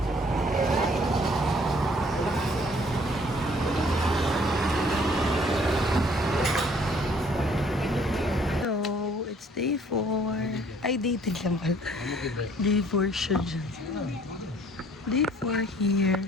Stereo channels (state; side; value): normal; both; correlation 0.59